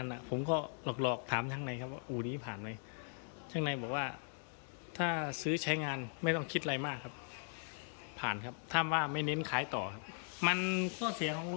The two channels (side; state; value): right; silent; 52 dB below the other